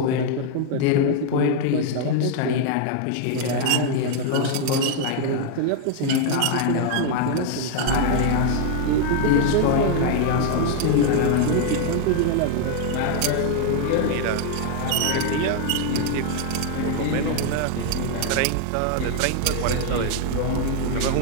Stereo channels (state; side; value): different; both; correlation 0.00